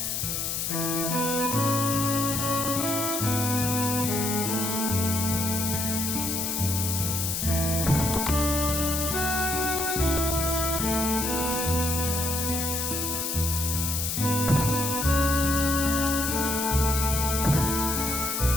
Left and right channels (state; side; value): noise; left; hiss, 1 dB below the sound